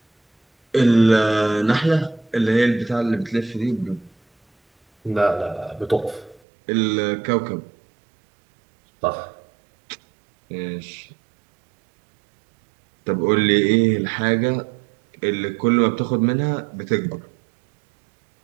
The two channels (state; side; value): drops out; left; at 6.4 s